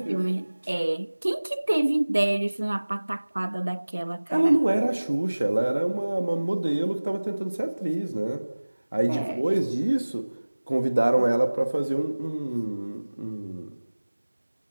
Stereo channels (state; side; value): inverted; both; correlation -1.00